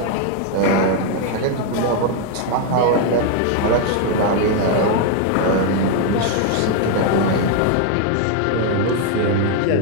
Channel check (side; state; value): both; different; correlation 0.01